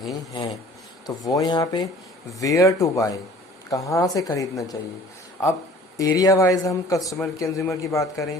हैं। तो वो यहाँ पे वेयर टू बाय, कहाँ से खरीदना चाहिए। अब एरिया वाइज हम कस्टमर कंज्यूमर की बात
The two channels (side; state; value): both; normal; correlation 0.49